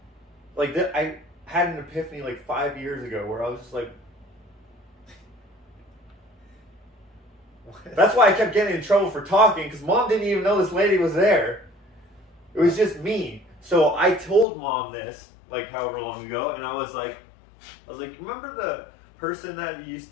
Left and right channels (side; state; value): right; drops out; at 14.5 s